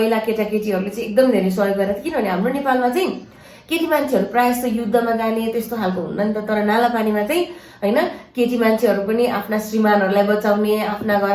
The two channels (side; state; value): both; identical; correlation 1.00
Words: केटाकेटीहरूले चाहिँ एकदम धेरै सहयोग गरेको थियो, किनभने हाम्रो नेपालमा चाहिँ केटी मान्छेहरू प्रायः जस्तो युद्धमा जाने त्यस्तो खालको हुन्न नि त। तर नालापानीमा चाहिँ होइन केटी मान्छेहरू पनि आफ्ना श्रीमानहरूलाई बचाउने, आफ्ना